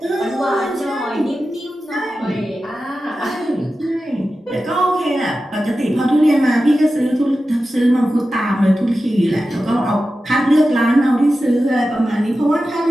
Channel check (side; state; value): both; normal; correlation 0.93